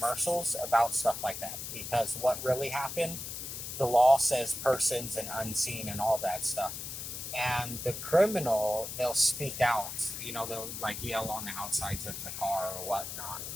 about stuff like that, because what really happened, the law says persons and unseen and all that stuff. And the criminal, they'll speak out. They'll like yell on the outsides of the car or whatnot.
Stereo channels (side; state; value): left; noise; hiss, 7 dB below the sound